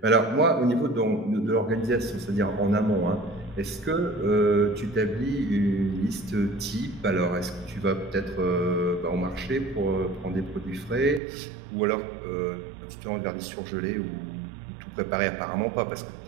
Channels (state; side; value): drops out; left; at 11.2 s